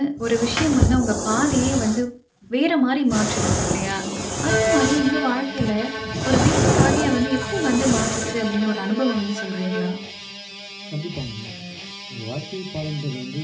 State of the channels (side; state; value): both; identical; correlation 1.00